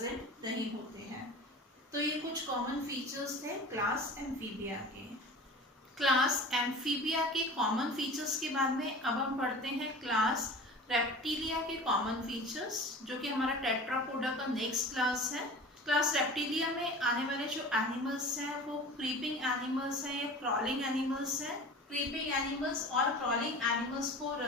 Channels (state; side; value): normal; both; correlation 0.37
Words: नहीं होते हैं। तो ये कुछ कॉमन फीचर्स थे क्लास एम्फीबिया के। क्लास एम्फीबिया के कॉमन फीचर्स के बाद में अब हम पढ़ते हैं क्लास रेप्टिलिया के कॉमन फीचर्स, जो कि हमारा टेट्रापोडा का नेक्स्ट क्लास है। क्लास रेप्टिलिया में आने वाले जो एनिमल्स हैं वो क्रीपिंग एनिमल्स हैं या क्रॉलिंग एनिमल्स हैं। क्रीपिंग एनिमल्स और क्रॉलिंग एनिमल्स को